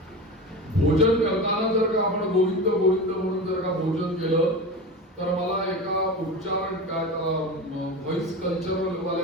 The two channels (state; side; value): normal; both; correlation 0.27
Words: भोजन करताना जर का आपण गोविंद गोविंद म्हणून जर का भोजन केलं तर मला एका उच्चारण काय व्हॉइस कल्चरल